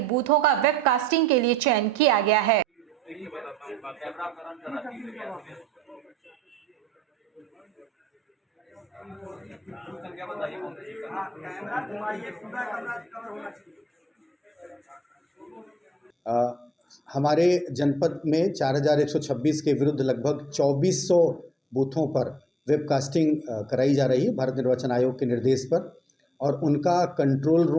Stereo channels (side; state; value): both; normal; correlation 0.72